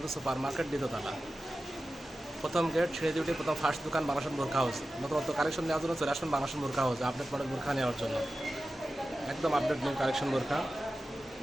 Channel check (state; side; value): normal; both; correlation 0.94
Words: সুপার মার্কেট দ্বিতীয়তলা, প্রথম গেট ছেড়ে দিয়ে প্রথম ফার্স্ট দোকান বাংলাদেশ বোরখা হাউস। নতুনত্ব কালেকশন নেওয়ার জন্য চলে আসবেন বাংলাদেশ বোরখা হাউসে আপডেট মডেল বোরখা নেওয়ার জন্য। একদম আপডেট নিউ কালেকশন বোরখা